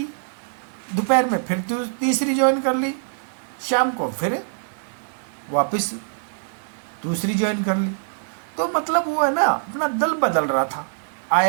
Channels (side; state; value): left; silent; digital silence